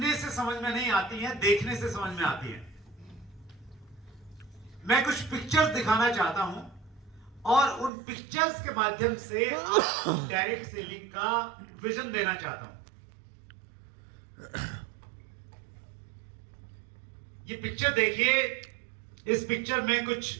से समझ में नहीं आती हैं, देखने से समझ में आती हैं। मैं कुछ पिक्चर्स दिखाना चाहता हूं और उन पिक्चर्स के माध्यम से आपको डायरेक्ट सेलिंग का विजन देना चाहता हूं। ये पिक्चर देखिए, इस पिक्चर में कुछ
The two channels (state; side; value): drops out; left; at 7.9 s